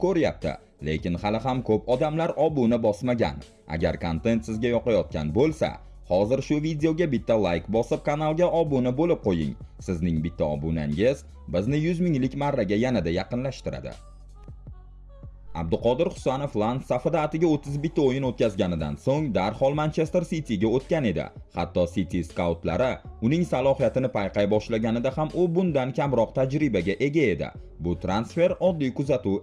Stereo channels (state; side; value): identical; both; correlation 1.00